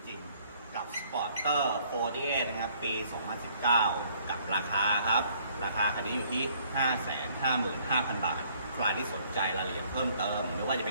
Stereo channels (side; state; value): both; inverted; correlation -0.62